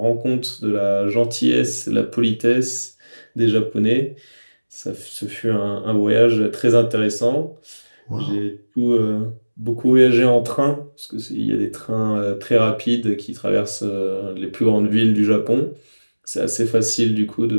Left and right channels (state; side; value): inverted; both; correlation -1.00